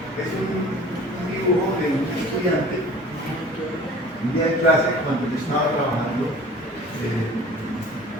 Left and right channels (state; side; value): normal; both; correlation 0.45